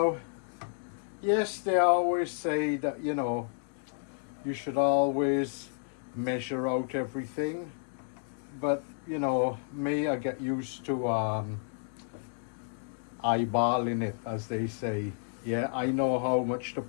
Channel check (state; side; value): silent; right; digital silence